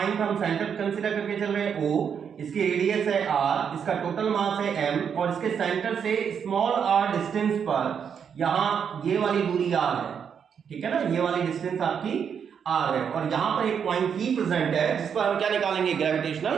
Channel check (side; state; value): left; quieter; 7.4 dB